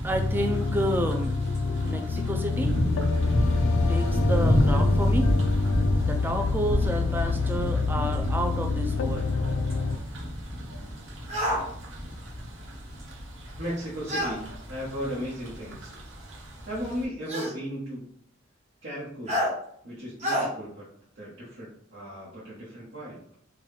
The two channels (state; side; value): normal; both; correlation 0.77